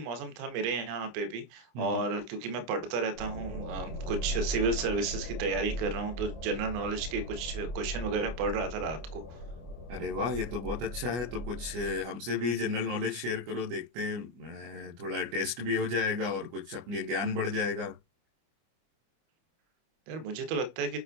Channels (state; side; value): late; left; 25 ms